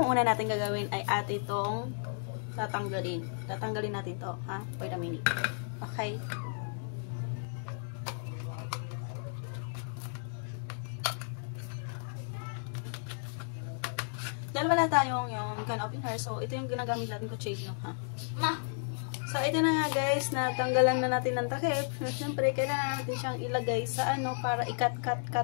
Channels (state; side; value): silent; right; digital silence